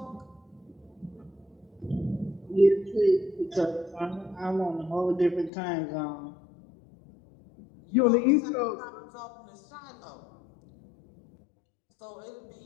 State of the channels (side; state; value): right; drops out; at 5.5 s